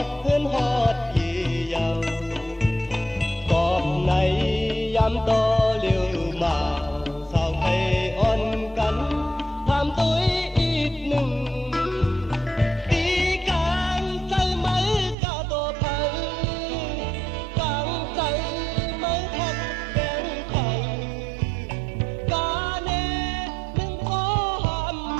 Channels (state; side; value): drops out; left; at 15.2 s